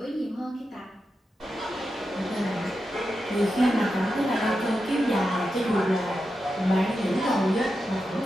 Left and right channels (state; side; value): normal; both; correlation 0.89